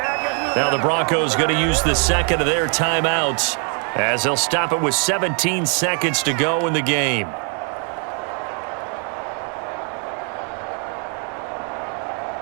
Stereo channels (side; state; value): left; quieter; 39.7 dB